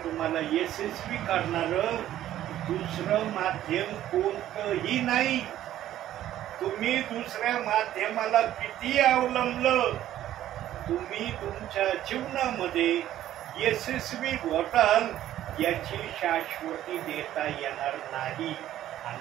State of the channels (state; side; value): quieter; left; 12.7 dB